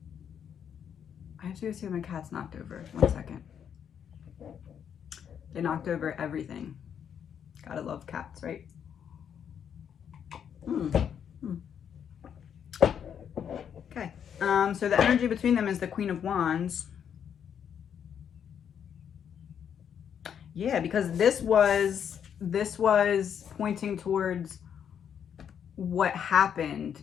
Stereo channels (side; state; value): right; quieter; 8.3 dB